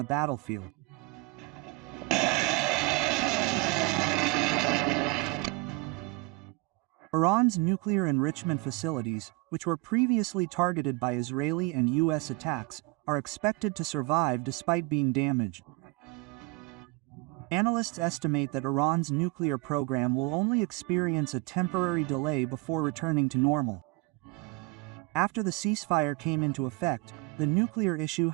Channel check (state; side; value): quieter; left; 23.3 dB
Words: battlefield. Iran's nuclear enrichment facilities, which were previously targeted by Israeli and U.S. attacks, are expected to survive despite being damaged. Analysts estimate that Iran's nuclear program will only experience a temporary delay before returning to normal. After the ceasefire came into effect, the nuclear issue